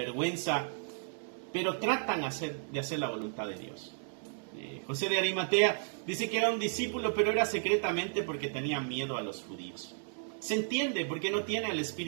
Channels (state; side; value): silent; left; digital silence